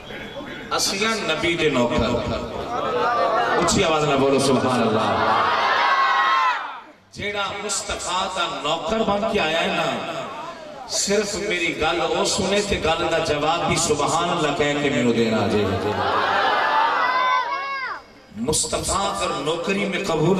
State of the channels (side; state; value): both; identical; correlation 1.00